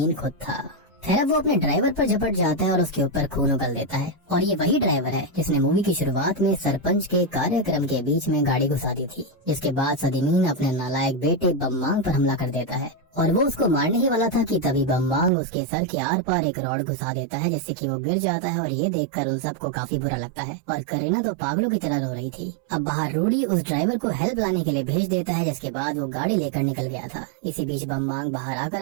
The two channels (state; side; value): drops out; left; at 15.3 s